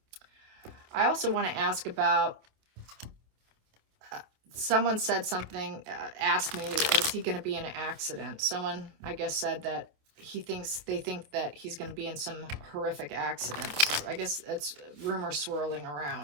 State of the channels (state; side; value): late; left; 27 ms